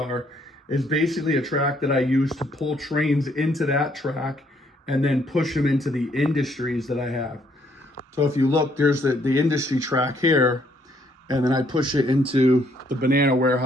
is basically a track that I use to pull trains into that track and then push them into the industries that I have. So if you look, there's the industry track here, and then I push it into the banana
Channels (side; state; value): both; normal; correlation 0.68